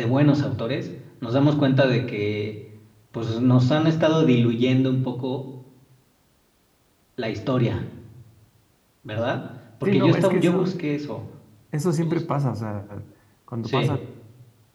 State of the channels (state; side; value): identical; both; correlation 1.00